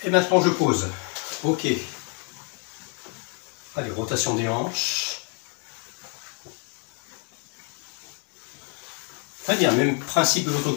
Et maintenant je pose. Ok. Allez, rotation des hanches. Très bien, même principe de l'autre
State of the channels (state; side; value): quieter; right; 33.4 dB